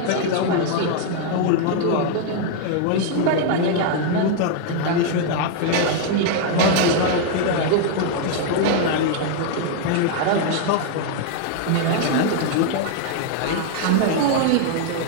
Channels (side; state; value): both; different; correlation 0.00